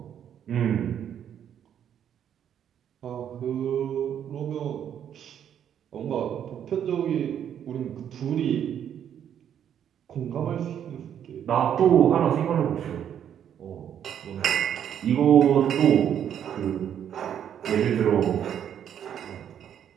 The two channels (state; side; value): quieter; left; 9.4 dB